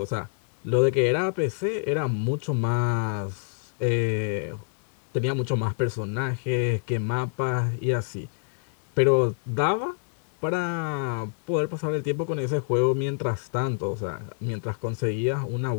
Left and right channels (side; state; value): right; silent; digital silence